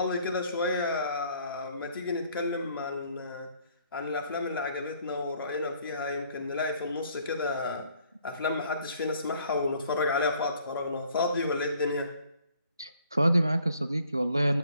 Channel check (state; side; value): inverted; both; correlation -0.62